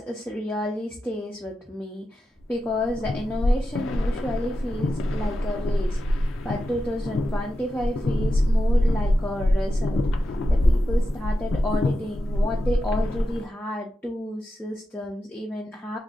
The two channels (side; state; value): both; normal; correlation 0.89